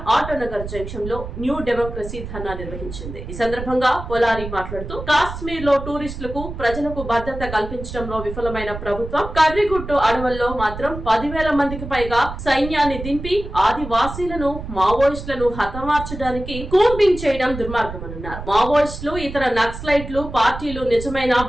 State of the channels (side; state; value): right; noise; rumble, 9 dB below the sound